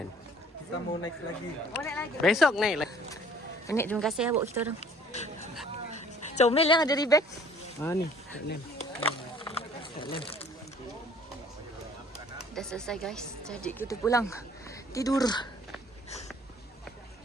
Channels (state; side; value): normal; both; correlation 0.54